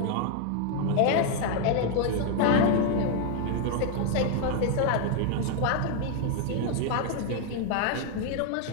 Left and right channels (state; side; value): different; both; correlation 0.00